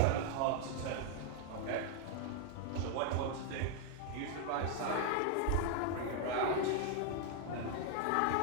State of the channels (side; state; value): both; different; correlation 0.00